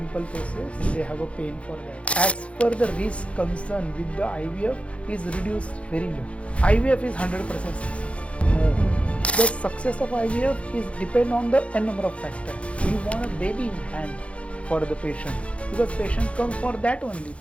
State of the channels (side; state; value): right; late; 0.062 ms